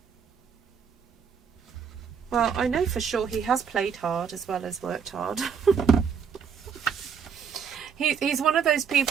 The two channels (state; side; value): quieter; left; 6.8 dB